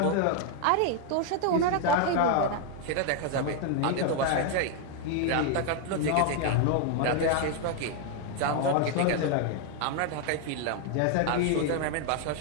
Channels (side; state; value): both; different; correlation 0.00